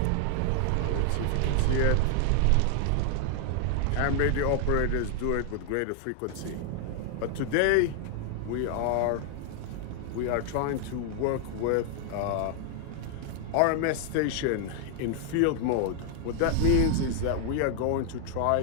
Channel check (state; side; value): different; both; correlation 0.00